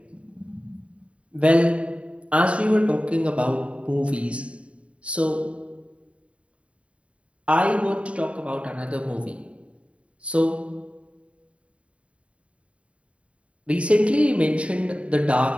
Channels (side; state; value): left; late; 0.062 ms